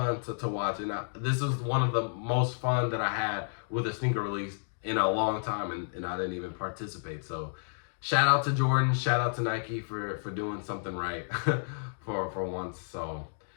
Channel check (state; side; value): silent; right; digital silence